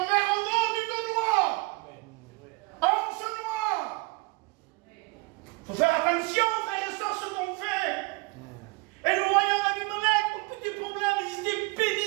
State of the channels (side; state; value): left; quieter; 26.0 dB